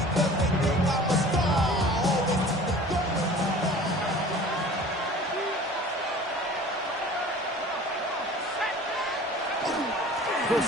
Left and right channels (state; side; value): normal; both; correlation 0.44